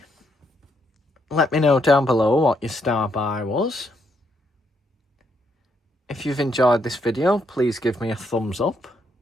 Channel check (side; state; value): both; normal; correlation 0.75